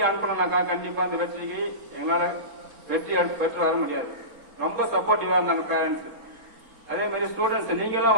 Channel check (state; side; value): late; left; 4.0 ms